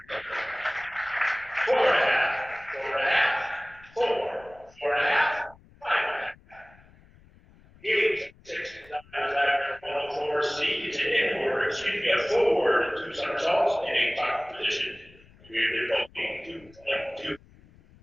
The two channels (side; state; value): left; noise; rumble, 26 dB below the sound